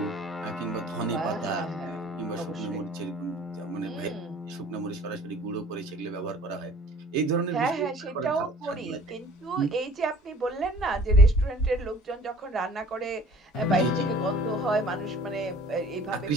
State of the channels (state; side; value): normal; both; correlation 0.50